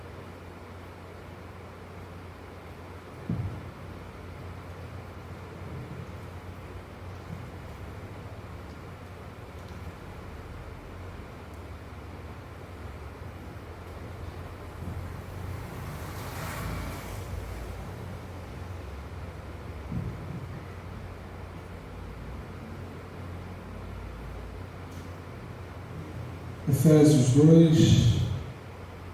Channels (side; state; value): both; identical; correlation 1.00